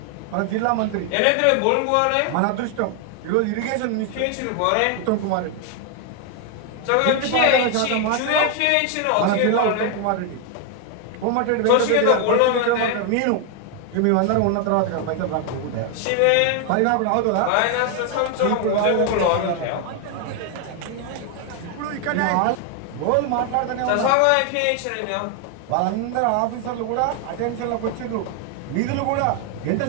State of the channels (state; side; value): different; both; correlation 0.01